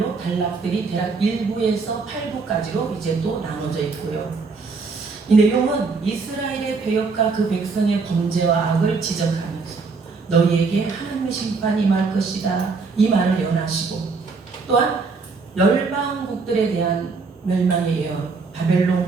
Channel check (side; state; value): left; quieter; 4.5 dB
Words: 단락들이 대략 1부에서 8부까지로 이제 또 나눠져 있고요. 이 내용은 이스라엘의 배역과 그 백성의 범죄와 악을 지적하면서 너희에게 하나님의 심판이 임할 것이다 이 말을 예언하시고, 또한 열방국들에 대한 멸망의 예언,